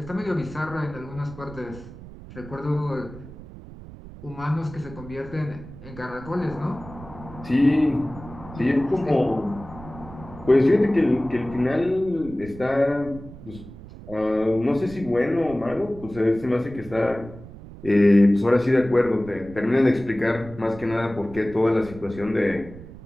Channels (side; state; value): right; noise; rumble, 16 dB below the sound